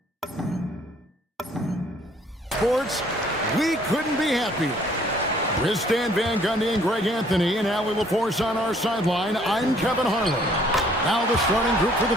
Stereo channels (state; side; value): normal; both; correlation 0.60